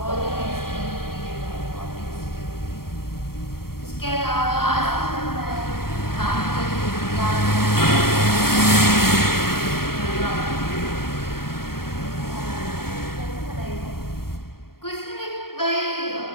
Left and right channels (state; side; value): late; right; 0.93 ms